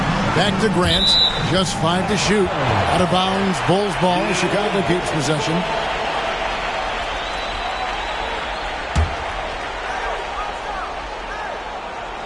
Back to Grant. Just 5 to shoot. Out of bounds. Bulls ball. Chicago keeps possession.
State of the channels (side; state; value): both; identical; correlation 1.00